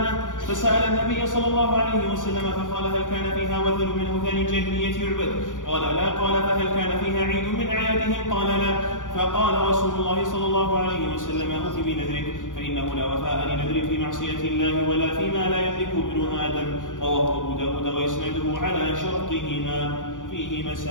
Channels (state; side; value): late; right; 0.87 ms